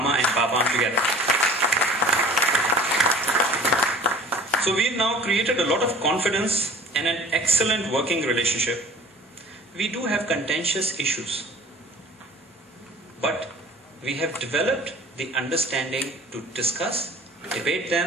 and PAAPAM together. So we've now created a lot of confidence and an excellent working relationship. We do have contentious issues, but we have developed the understanding to discuss, debate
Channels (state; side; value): normal; both; correlation 0.46